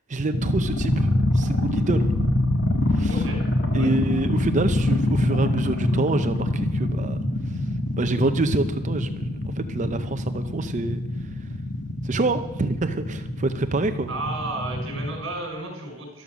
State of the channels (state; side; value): normal; both; correlation 0.72